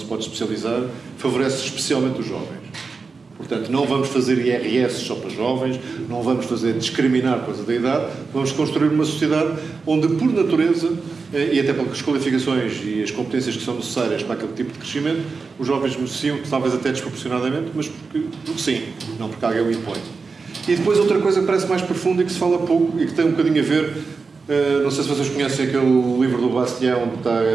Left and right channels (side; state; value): left; quieter; 4.6 dB